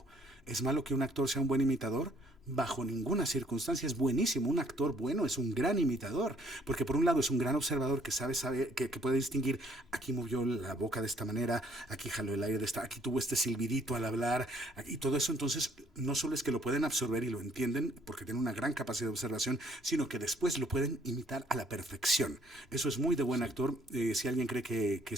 ¿Es malo que un actor sea un buen imitador? Bajo ninguna circunstancia. Es buenísimo. Un actor bueno es un gran imitador, porque por un lado es un gran observador que sabe que puede distinguir, aquí movió la boca de esta manera, aquí jaló el aire de esta, aquí tuvo este silbidito al hablar, y todo eso. Entonces no solo es que lo pueden absorber y lo entienden porque tienen una gran capacidad de observación, sino que después lo pueden imitar a la perfección. Eso es muy de buen actor. Si alguien cree que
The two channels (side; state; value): both; normal; correlation 0.62